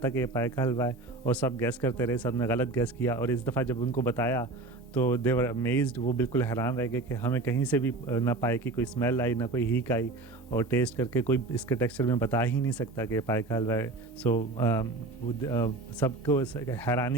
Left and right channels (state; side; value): quieter; left; 3.0 dB